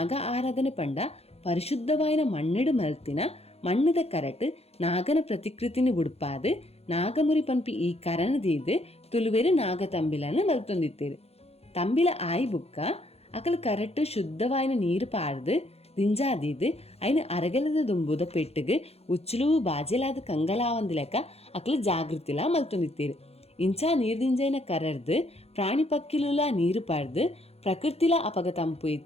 ಆರಾಧನೆ ಪಂಡ ಪರಿಶುದ್ಧವಾಯಿನ ಮಣ್ಣಿಡು ಮಲ್ತಿನ ಮಣ್ಣದ ಕರಟ್ ನಾಗನ ಪ್ರತಿಕೃತಿನಿ ಉಡುಪಾದು ನಾಗಮುರಿ ಪನ್ಪಿ ಈ ಕರನದೀದು ತುಳುವೆರು ನಾಗ ತಂಬಿಲನ್ನು ಮಲ್ತೊಂದಿತ್ತೇರು. ತಂಬಿಲ ಆಯಿ ಬುಕ್ಕ ಅಕಲ್ ಕರಟ್ ಶುದ್ಧವಾಯಿನ ನೀರು ಪಾಡ್ದು ದಿಂಜಾದೀದು ಐನು ಅರಗಲದ ದುಂಬುದ ಪೆಟ್ಟಿಗೆ ಉಚ್ಚಲು ಬಾಜೆಲಾದ ಕಂಗಲಾವಂದ ಲೆಕ್ಕ ಅಕಲ್ ಜಾಗೃತಿಲ ಮಲ್ತೊಂದಿತ್ತೇರು. ಇಂಚಾ ನೀರು ದಿಂಜೈನ ಕರರ್ದು ಪ್ರಾಣಿ ಪಕ್ಕಿಲುಲ ನೀರು ಪಾಡ್ದು ಪ್ರಕೃತಿಲ ಅಪಗ ತಂಪು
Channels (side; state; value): right; late; 0.29 ms